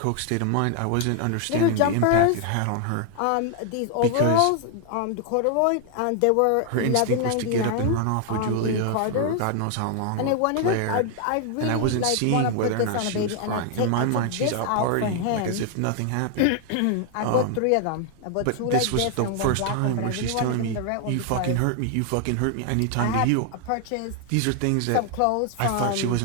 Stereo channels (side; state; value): both; different; correlation 0.00